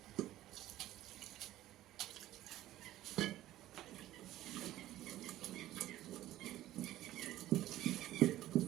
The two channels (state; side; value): quieter; left; 14.6 dB